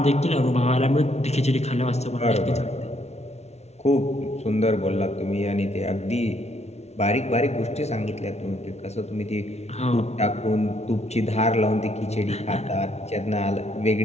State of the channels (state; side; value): late; right; 0.31 ms